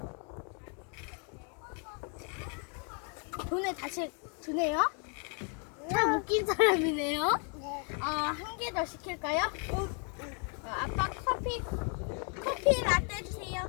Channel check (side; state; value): right; quieter; 38.9 dB